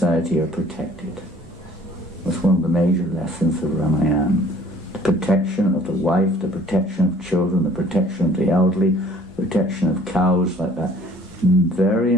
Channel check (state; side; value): normal; both; correlation 0.54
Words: are protected. That's one of the major lessons of Ramayana. The protection of the wife, the protection of children, the protection of the elderly, the protection of cows, like that. Very